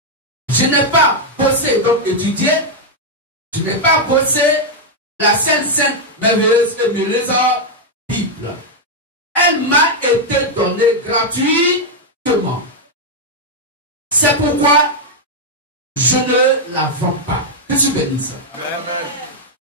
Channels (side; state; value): both; normal; correlation -0.01